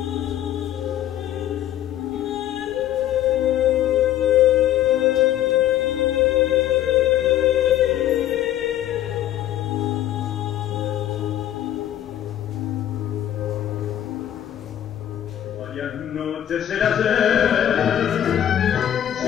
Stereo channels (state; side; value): quieter; right; 11.8 dB